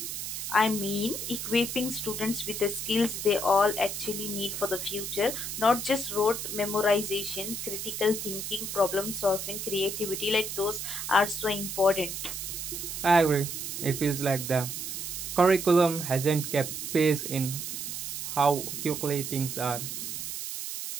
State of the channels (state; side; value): noise; right; hiss, 5 dB below the sound